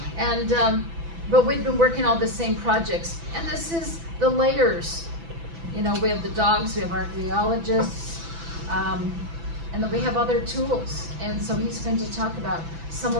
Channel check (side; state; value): left; late; 6.0 ms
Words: Mm-hmm. And, but we've been working on the same projects. And this is the layers. You know, we have the dogs, we have archaeologists, and then we have other tools. And so he's going to talk about some